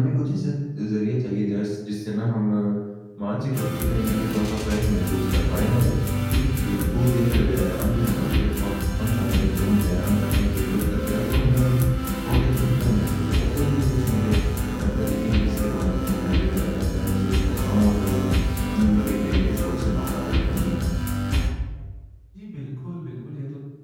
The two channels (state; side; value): identical; both; correlation 1.00